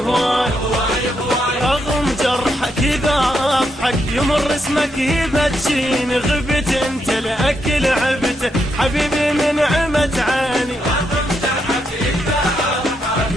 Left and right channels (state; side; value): normal; both; correlation 0.80